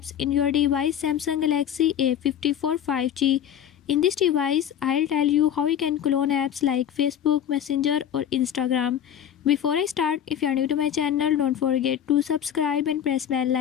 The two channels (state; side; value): quieter; right; 9.6 dB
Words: in your device Samsung Galaxy A54 5G. In this device I'll tell you how you can clone apps like Facebook, Messenger or Instagram. Before I start, if you are new to my channel, don't forget to subscribe and press bell